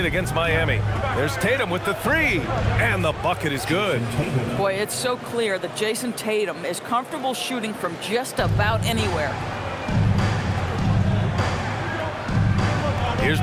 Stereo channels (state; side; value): identical; both; correlation 1.00